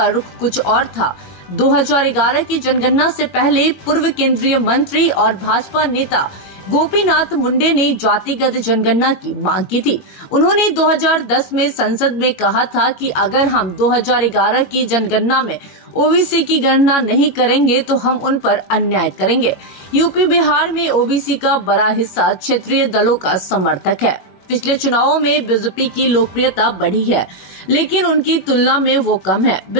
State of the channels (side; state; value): right; late; 21 ms